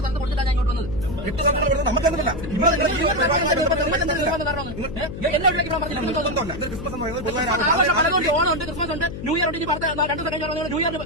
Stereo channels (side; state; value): left; noise; hum, 9 dB below the sound